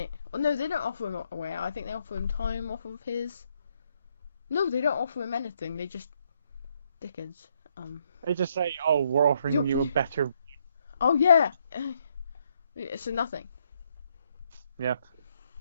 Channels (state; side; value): inverted; both; correlation -0.73